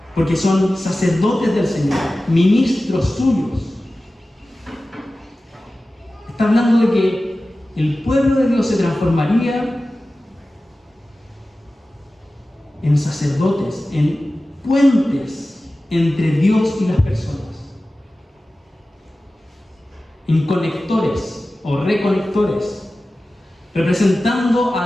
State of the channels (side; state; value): both; normal; correlation 0.95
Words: porque son sacerdotes del Señor, ministros suyos. Está hablando de que el pueblo de Dios se transformaría en sacerdotes, en puentes entre Dios y las personas, en conectores o reconectores, representando